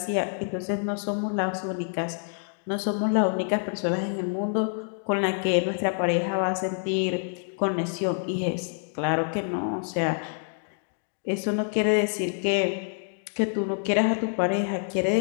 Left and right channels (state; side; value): silent; right; 60 dB below the other